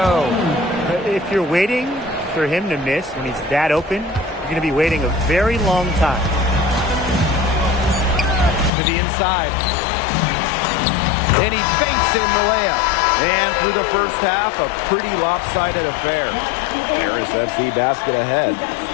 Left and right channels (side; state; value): right; drops out; at 8.7 s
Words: If you're waiting for him to miss when he's that open, you're going to be waiting a very long time. To the inside. And he banks in the layup. And through the first half, a pretty lopsided affair. Paris FC basket ahead.